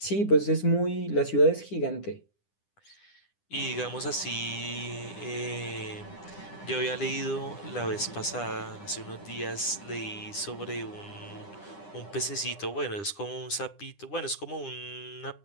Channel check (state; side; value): late; right; 9.9 ms